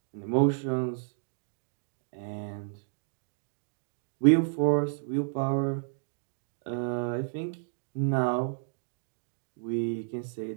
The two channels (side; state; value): left; silent; digital silence